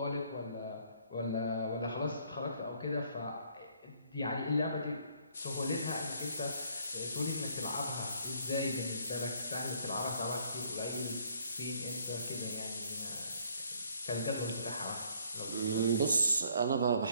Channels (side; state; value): both; inverted; correlation -0.64